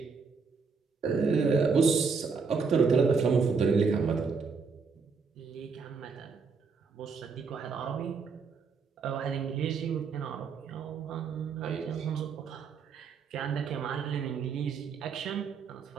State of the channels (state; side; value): quieter; left; 5.2 dB